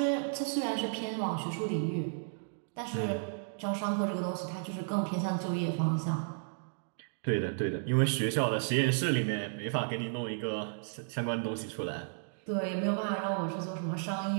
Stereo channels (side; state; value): left; silent; digital silence